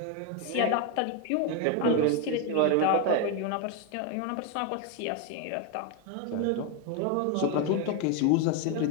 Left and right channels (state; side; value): different; both; correlation 0.02